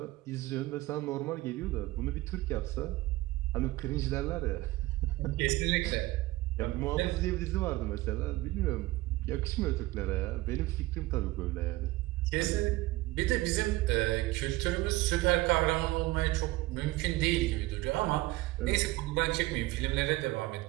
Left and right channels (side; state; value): left; quieter; 19.2 dB